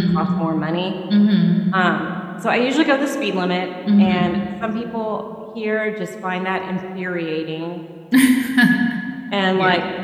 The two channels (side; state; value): both; identical; correlation 1.00